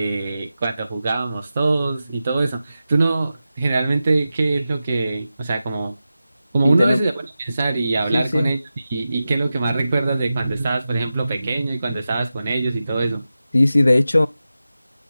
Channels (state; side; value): inverted; both; correlation -0.93